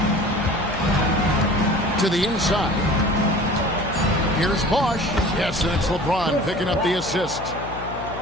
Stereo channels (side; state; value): left; noise; hum, 12 dB below the sound